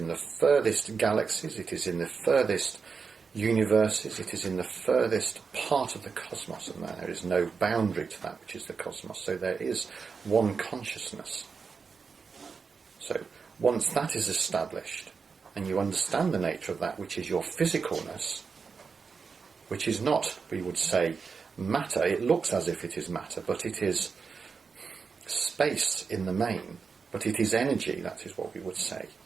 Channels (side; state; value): left; quieter; 5.3 dB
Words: the furthest galaxies, it is in the furthest universes, it is in the furthest part of the cosmos, and there is no boundary to that which is the cosmos. So there is one consciousness. So once that is established, and you understand the nature of that which is your physicalness, which is not, we would say, matter. It looks as if it is matter, but it is space in the main, but it is energy, that is what we would say.